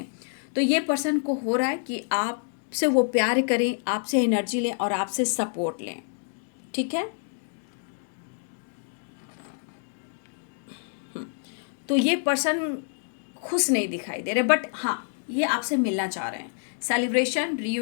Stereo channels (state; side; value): silent; right; digital silence